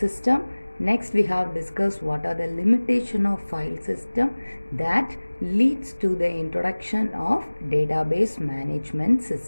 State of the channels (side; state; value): both; inverted; correlation -1.00